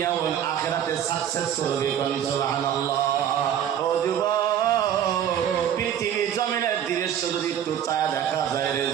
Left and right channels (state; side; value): quieter; left; 9.9 dB